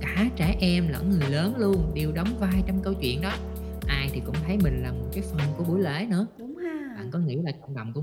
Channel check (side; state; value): both; identical; correlation 1.00